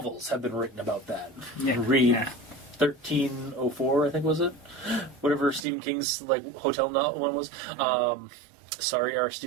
have been written about that. Yeah. Read 1304, I think, was it? Whatever Stephen King's like hotel one was. Sorry, our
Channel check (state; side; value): drops out; left; at 5.7 s